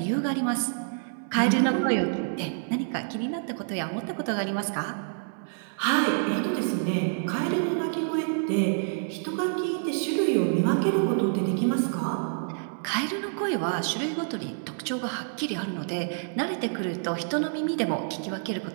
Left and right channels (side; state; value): left; silent; 60 dB below the other